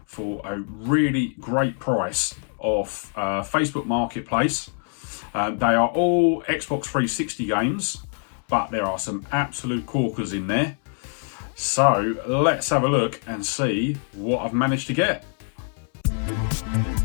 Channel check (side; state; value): right; silent; 57 dB below the other